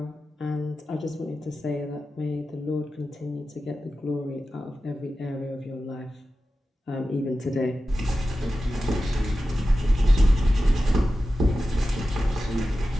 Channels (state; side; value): normal; both; correlation 0.93